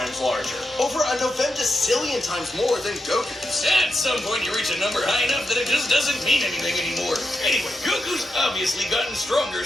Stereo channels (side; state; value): both; normal; correlation 0.85